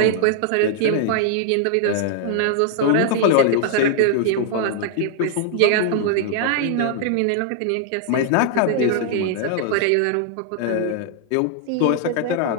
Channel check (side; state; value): both; different; correlation -0.01